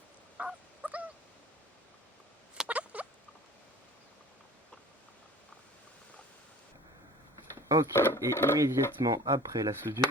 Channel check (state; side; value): normal; both; correlation 0.45